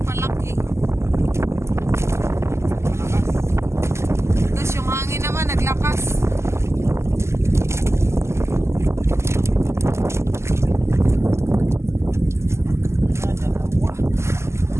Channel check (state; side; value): late; left; 0.13 ms